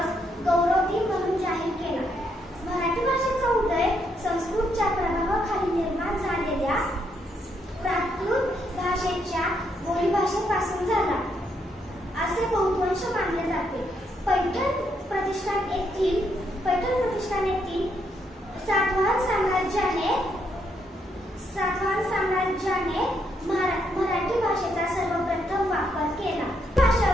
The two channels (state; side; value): normal; both; correlation 0.76